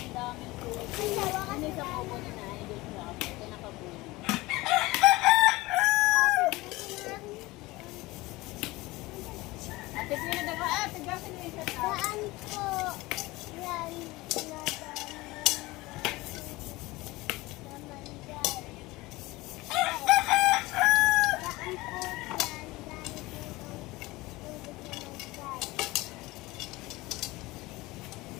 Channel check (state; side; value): quieter; right; 20.6 dB